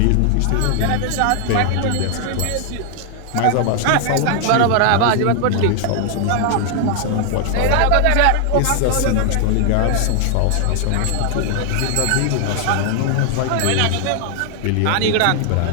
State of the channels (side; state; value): both; different; correlation 0.00